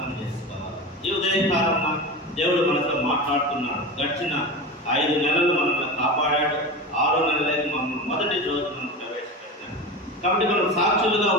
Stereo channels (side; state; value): both; normal; correlation 0.27